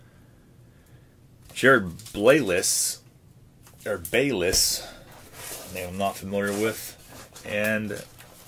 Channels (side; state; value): both; identical; correlation 1.00